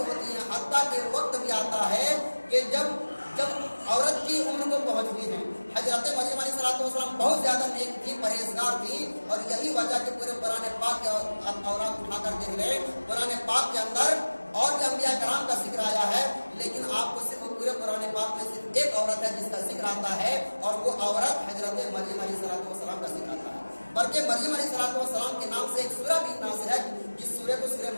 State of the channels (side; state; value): both; inverted; correlation -1.00